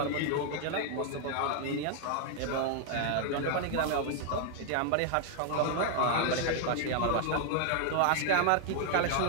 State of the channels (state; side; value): different; both; correlation 0.00